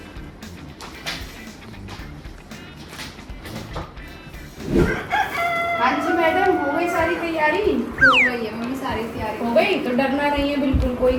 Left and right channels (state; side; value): identical; both; correlation 1.00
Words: हाँ जी मैडम, हो गई सारी तैयारी? हो गई है मम्मी, सारी तैयारी हो गई तो डरना नहीं है बिल्कुल, कोई